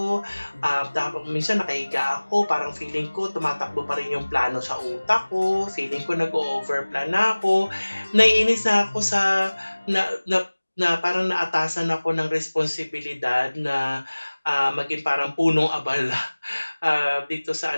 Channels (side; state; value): both; inverted; correlation -1.00